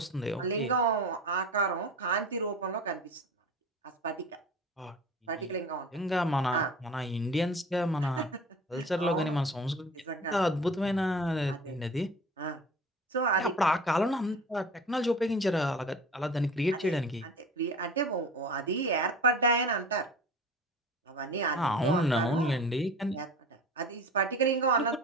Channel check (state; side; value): normal; both; correlation 0.38